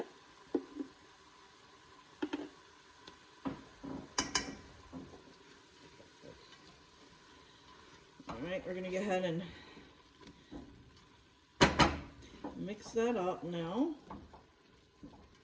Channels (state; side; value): identical; both; correlation 1.00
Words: All right, we're going to go ahead and mix that up now.